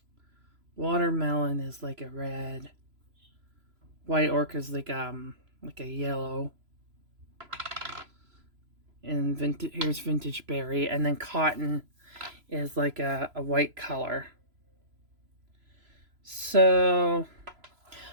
Watermelon is like a red. White orchid is like a yellow. And here's vintage berry, and then cotton is like a white color. So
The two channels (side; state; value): left; late; 3.0 ms